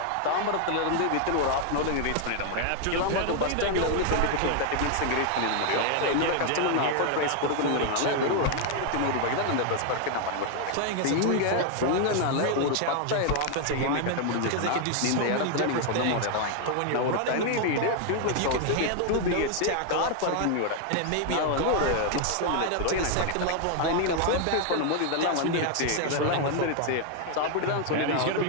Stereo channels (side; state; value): both; different; correlation 0.00